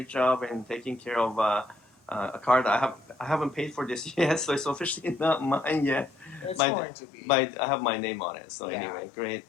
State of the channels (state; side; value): drops out; right; at 6.6 s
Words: job and taking care of a car that I haven't paid for this yet, so it's officially not mine yet. It's By- going to be. I have my name on it. So Yeah. anyway, great.